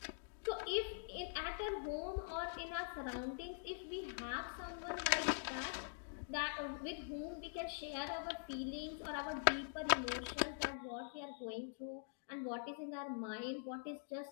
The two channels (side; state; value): right; silent; digital silence